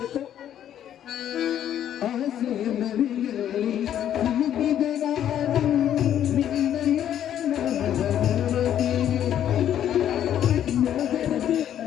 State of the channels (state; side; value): quieter; right; 10.5 dB